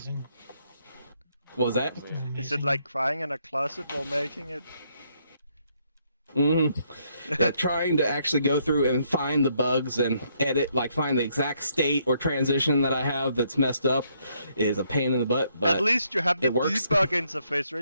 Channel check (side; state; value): both; inverted; correlation -0.72